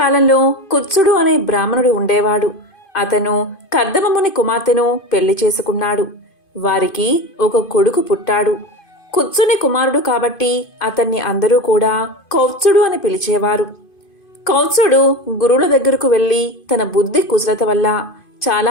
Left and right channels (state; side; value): late; right; 2.5 ms